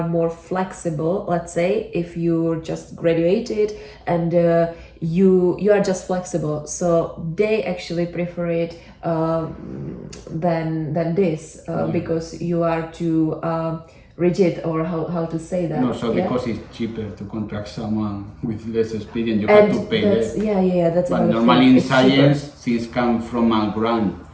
more flexible. Let's say if you just graduated and you are just flexible, so they actually prefer it than this because you are too rigid, or how to say that. No, so because it's cheaper to contract someone with less experience, you have to pay less. That's But normally in science, things come from a grant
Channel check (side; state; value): both; identical; correlation 1.00